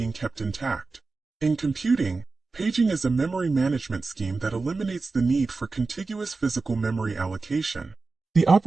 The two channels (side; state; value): left; quieter; 3.9 dB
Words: kept intact. In computing, paging is a memory management scheme that eliminates the need for contiguous physical memory allocation. The